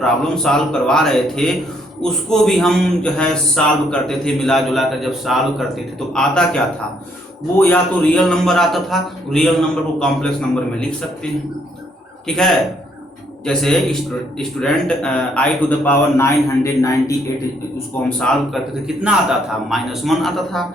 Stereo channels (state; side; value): normal; both; correlation 0.69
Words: सॉल्व करवा रहे थे उसको भी हम जो है सॉल्व करते थे, मिला जुला कर जब सॉल्व करते थे तो आता क्या था, वो या तो रियल नंबर आता था, रियल नंबर को कॉम्प्लेक्स नंबर में लिख सकते हैं, ठीक है। जैसे student i to the power 998 उसको हम सॉल्व करते थे, कितना आता था, -1 आता था।